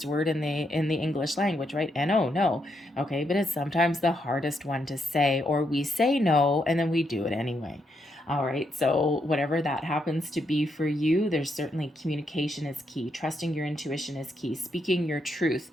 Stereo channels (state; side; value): normal; both; correlation 0.79